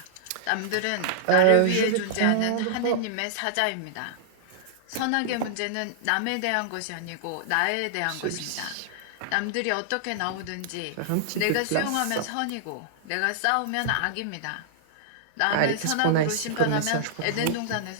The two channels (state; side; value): different; both; correlation -0.02